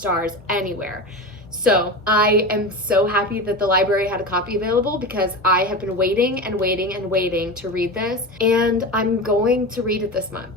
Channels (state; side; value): normal; both; correlation 0.25